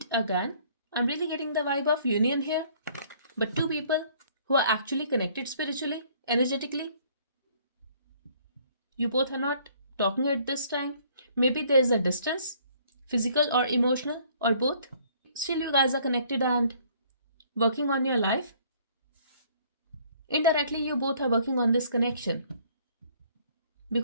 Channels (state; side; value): inverted; both; correlation -0.60